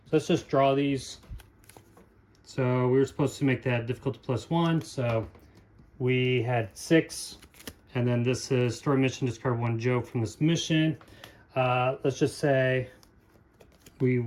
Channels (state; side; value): identical; both; correlation 1.00